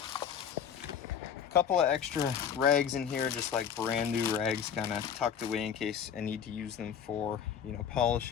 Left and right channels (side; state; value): right; quieter; 8.0 dB